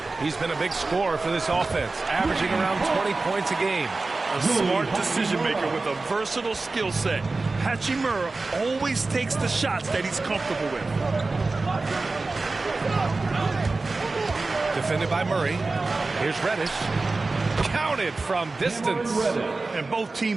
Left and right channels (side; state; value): left; quieter; 3.6 dB